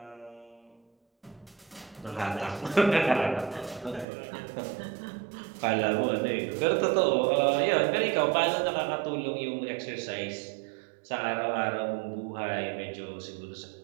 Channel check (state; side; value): drops out; left; at 4.0 s